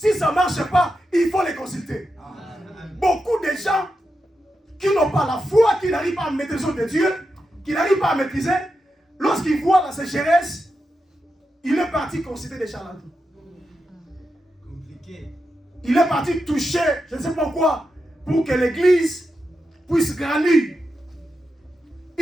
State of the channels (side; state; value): both; normal; correlation 0.88